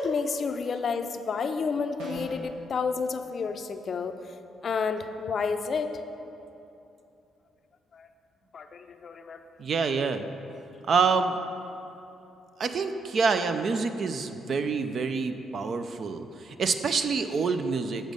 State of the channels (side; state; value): both; normal; correlation 0.75